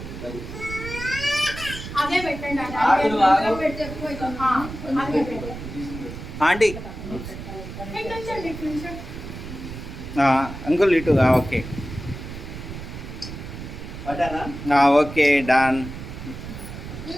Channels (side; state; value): right; noise; rumble, 10 dB below the sound